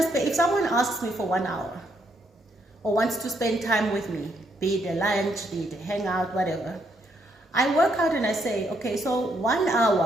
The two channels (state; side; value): normal; both; correlation 0.75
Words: someone asks me for 1 hour or wants to spend time with me, be it a lunch, be it a hangout, whatever, I work out and I say, okay, so 1